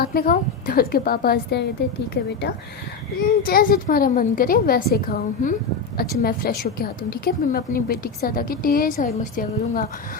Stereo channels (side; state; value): right; quieter; 4.8 dB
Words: में खाओ। तो उसके पापा हंसते हैं, कहते ठीक है बेटा जैसे तुम्हारा मन करे वैसे खाओ। अच्छा मैं फ़्रेश होके आती हूँ, ठीक है, फिर मैं अपनी बेटी के साथ आके ढेर सारी मस्तियाँ करूँगा।